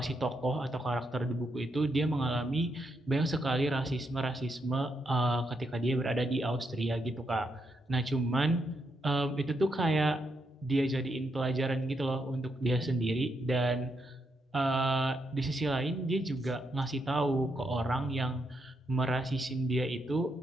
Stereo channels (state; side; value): normal; both; correlation 0.80